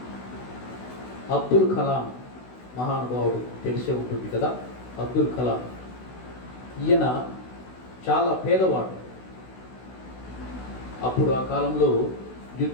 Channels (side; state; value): right; late; 16 ms